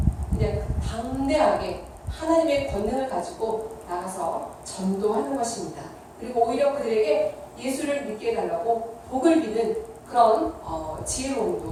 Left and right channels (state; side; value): identical; both; correlation 1.00